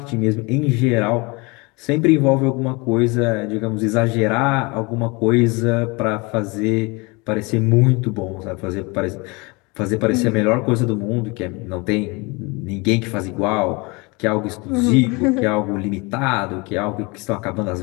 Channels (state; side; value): quieter; right; 27.1 dB